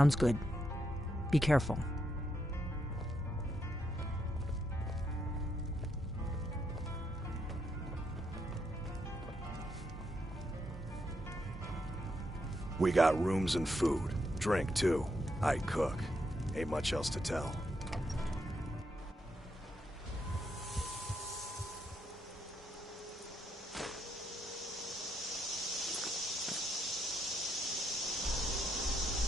good. Be careful. We got rooms and food. Drink, too. I cook. Ain't much else to tell.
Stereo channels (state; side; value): normal; both; correlation 0.79